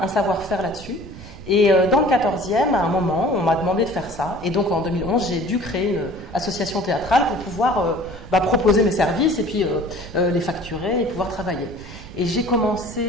savoir-faire là-dessus. Et dans le 14e, à un moment, on m'a demandé de faire ça. Et donc en 2011, j'ai dû créer une association théâtrale pour pouvoir proposer mes services et puis les facturer et pouvoir travailler. Et j'ai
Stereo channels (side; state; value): right; noise; rumble, 15 dB below the sound